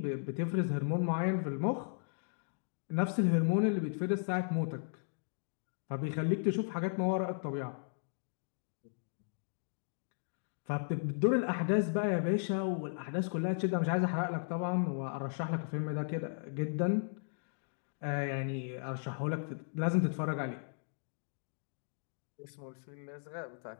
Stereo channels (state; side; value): silent; right; digital silence